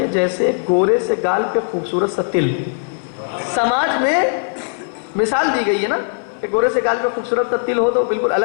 جیسے گورے سے گال پہ خوبصورت سا تل۔ سماج میں مثال دی گئی ہے نا کہ گورے سے گال پہ خوبصورت سا تل ہو تو بالکل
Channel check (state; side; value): silent; right; 58 dB below the other